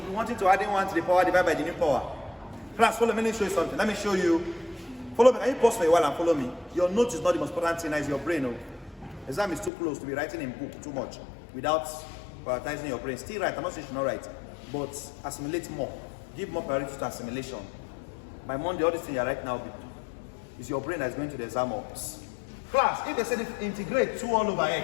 be wanting to add in 1 to the power divided by the new power. Class, follow me, let me show you something. Let me show you. Follow me. Can you pause for a while and follow me? Your note is not the most important thing, it's your brain. Oh. Exam is too close to be writing in book too much without prioritizing your brain. Still write, I'm not saying you should not write, but assimilate more. Give more priority to assimilation. By Monday, all this thing you're right now is your brain that's going to the exam box. Class, if they said integrate 2 all over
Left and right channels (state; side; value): drops out; right; at 9.7 s